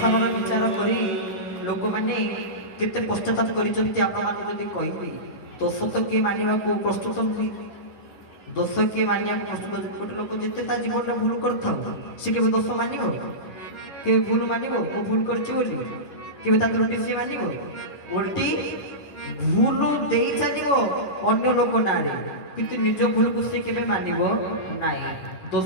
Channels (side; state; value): right; late; 11 ms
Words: ବିଚାର କରି ଲୋକମାନେ କେତେ ପଶ୍ଚାତାପ କରିଛନ୍ତି ଆପଣମାନଙ୍କୁ ଯଦି କହିବି। ଦୋଷ ତ କିଏ ମାନିବାକୁ ପ୍ରସ୍ତୁତ ନୁହେଁ, ଦୋଷ କିଏ ମାନିବାକୁ ପ୍ରସ୍ତୁତ? ଗୋଟେ ଲୋକ ଯେତେ ତା ଜୀବନରେ ଭୁଲ କରିଥାଉ ସେ କେବେ ଦୋଷ ମାନିବ? କେବେ ଭୁଲ ମାନିବ? ମୁଁ ଭୁଲ କରିଛି ବୋଲି କେବେ ତା ତ୍ରୁଟି ସିଏ ମାନିବ? ଓଲଟି ଭୁଲ ଦେଇ ଚାଲିବ ଅନ୍ୟ ଲୋକ ନାଁରେ, କିନ୍ତୁ ନିଜ ଭୁଲକୁ ସେ କେବେ ମାନିବ ନାହିଁ।